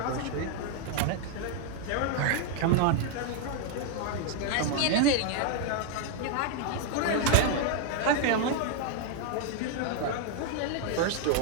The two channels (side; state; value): both; different; correlation 0.00